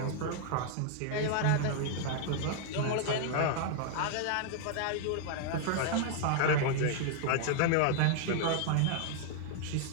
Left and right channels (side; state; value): both; different; correlation -0.01